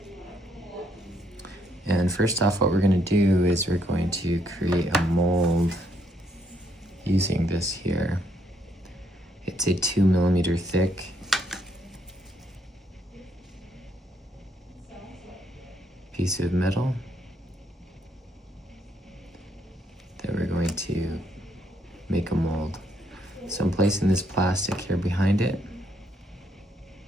And first off, what we're going to do is we're going to create a mold using this here. It's a 2 millimeter thick piece of metal that we're going to make a mold. So I'm placing this plastic here behind it.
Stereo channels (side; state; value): both; normal; correlation 0.73